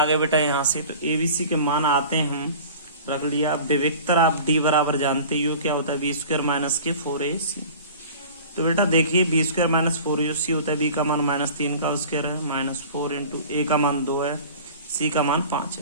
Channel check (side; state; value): both; inverted; correlation -0.41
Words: गए बेटा यहाँ से। तो abc के मान आते हैं, हम रख लिया। विवेक्तर आप d बराबर जानते ही हो क्या होता है बी स्क्वायर माइनस के 4ac। तो बेटा देखिए बी स्क्वायर माइनस 4ac होता है, b का मान -3 का स्क्वायर है, -4 इंटू a का मान 2 है, c का मान 5